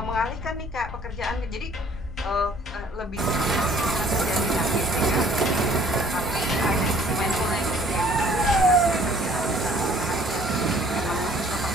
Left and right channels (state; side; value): normal; both; correlation 0.57